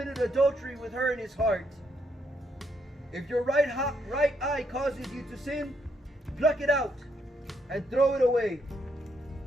adultery with her in his heart. If your right eye causes you to sin, pluck it out and throw it away.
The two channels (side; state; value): both; normal; correlation 0.75